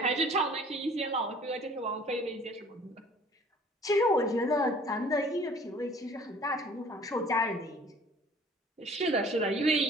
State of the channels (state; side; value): normal; both; correlation 0.52